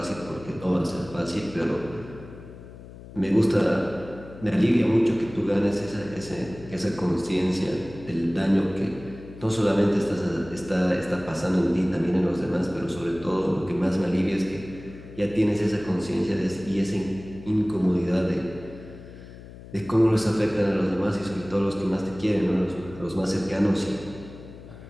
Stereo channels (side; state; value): left; noise; hum, 16 dB below the sound